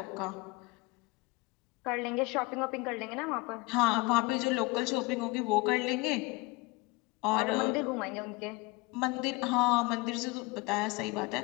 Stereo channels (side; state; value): right; quieter; 24.3 dB